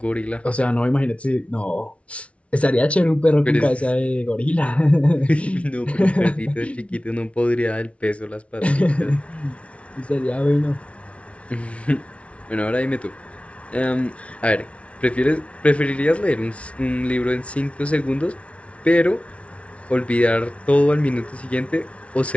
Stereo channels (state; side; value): late; right; 0.062 ms